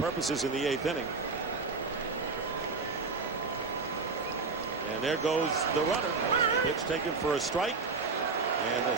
in the 8th inning. And there goes the runner. Pitch taken for a strike. And a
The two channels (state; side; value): quieter; left; 4.2 dB